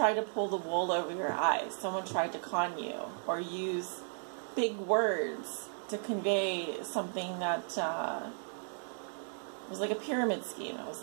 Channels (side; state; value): left; silent; digital silence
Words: to pull the wool over your eyes. Someone tried to con you or use big words to convey something that was like a pyramid scheme. It was